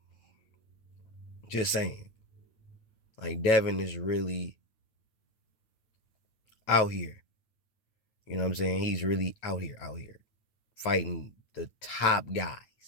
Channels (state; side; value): late; right; 9.0 ms